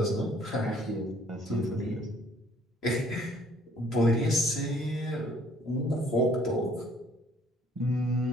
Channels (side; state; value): both; normal; correlation 0.60